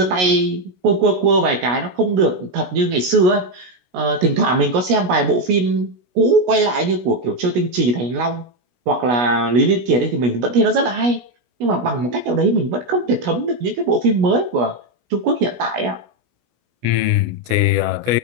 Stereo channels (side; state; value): left; late; 16 ms